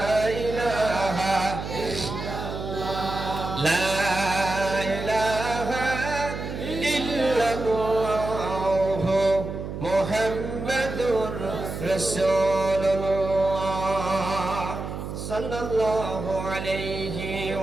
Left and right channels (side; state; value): right; noise; hum, 7 dB below the sound